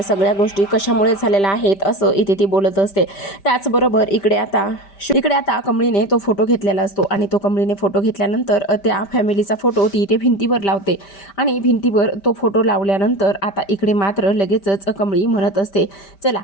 सगळ्या गोष्टी कशामुळे झालेल्या आहेत असं इथे ती बोलत असते. त्याचबरोबर इकडे आता कमळीने तो फोटो घेतलेला असतो आणि तो कमळीने फोटो घेतल्यानंतर त्या फॅमिलीचा फोटो ती इथे भिंतीवर लावते आणि भिंतीवर तो फोटो लावल्यानंतर आता इकडे मात्र लगेचच कमळी म्हणत असते चला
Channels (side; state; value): right; late; 5.1 ms